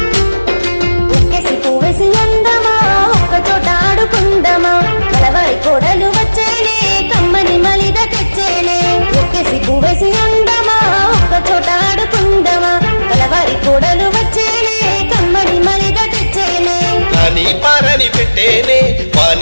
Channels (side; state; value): both; inverted; correlation -1.00